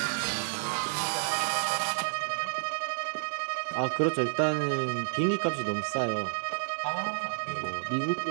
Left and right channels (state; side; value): silent; left; digital silence